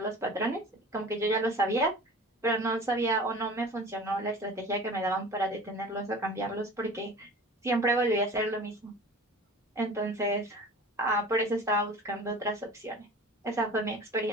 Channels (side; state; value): both; normal; correlation 0.40